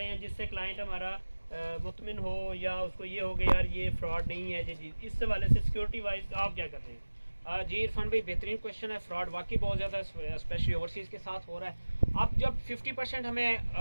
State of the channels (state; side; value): inverted; both; correlation -1.00